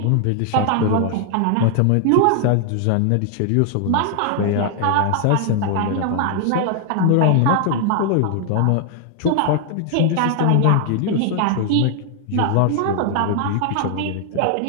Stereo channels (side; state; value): both; different; correlation 0.00